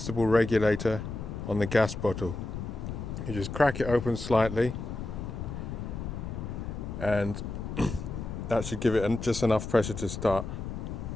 regulator on the gas bottle. You just crack it open slightly, and that should give it just enough pressure to start.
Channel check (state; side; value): noise; left; rumble, 6 dB below the sound